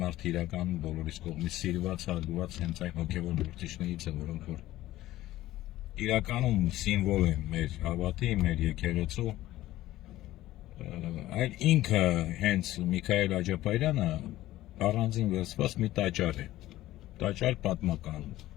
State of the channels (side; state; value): right; quieter; 15.4 dB